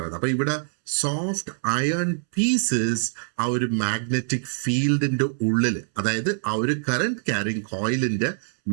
അപ്പൊ ഇവിടെ സോഫ്റ്റ് അയൺ പീസസ് ആ ഒരു മാഗ്നറ്റിക് ഫീൽഡിന്റെ ഉള്ളില്, അതായത് ആ ഒരു കറന്റ് ക്യാരിങ് കോയിലിന്റെ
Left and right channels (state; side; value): silent; left; 62 dB below the other